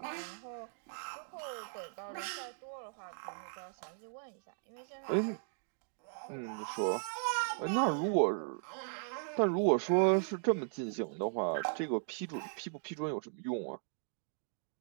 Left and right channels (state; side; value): silent; left; digital silence